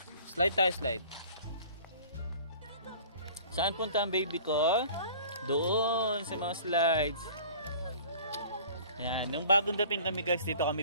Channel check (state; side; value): inverted; both; correlation -0.46